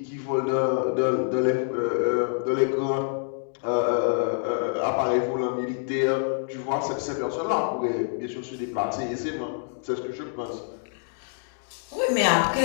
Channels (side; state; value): right; silent; digital silence